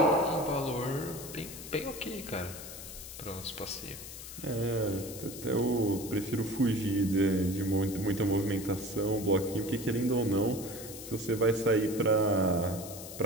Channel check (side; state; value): left; noise; hiss, 12 dB below the sound